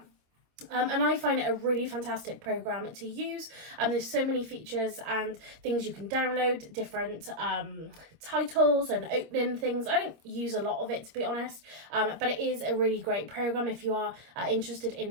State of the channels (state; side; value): late; left; 26 ms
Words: And I find it a really fantastic program to use. There's so many features and things you can download, different titles and opening things. I don't use a lot of it, to be honest, but it is a really great program if you are interested